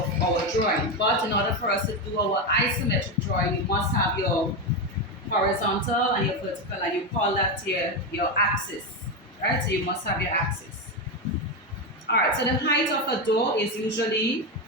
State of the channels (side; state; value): both; normal; correlation 0.12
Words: drawing. But in order for us to do our isometric drawing, you must have your horizontal and your vertical, and you call that your axis, right? So you must have your axis. All right, so the height of a door is usually